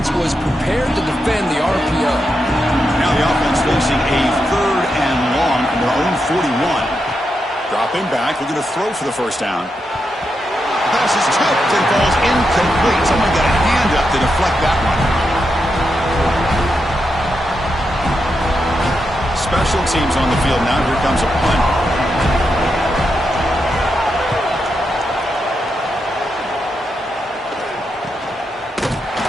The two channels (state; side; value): normal; both; correlation 0.85